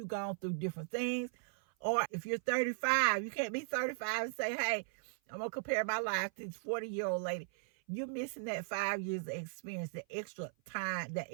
gone through different things. Or if you're 35, you can't be 35 and say, hey, I'm going to compare my life to this 40-year-old lady. You're missing that 5 years of experience, the extra time, that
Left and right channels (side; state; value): left; silent; 53 dB below the other